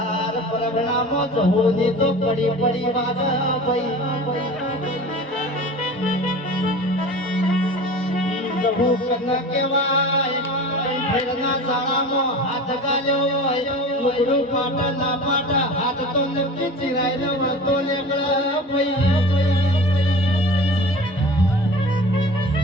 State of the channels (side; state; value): both; normal; correlation 0.37